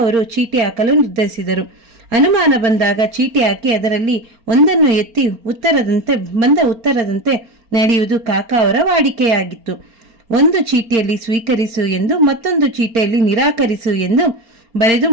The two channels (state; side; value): late; left; 4.4 ms